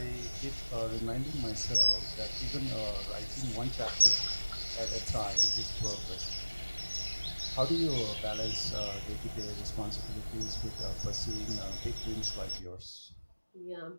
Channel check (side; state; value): both; inverted; correlation -1.00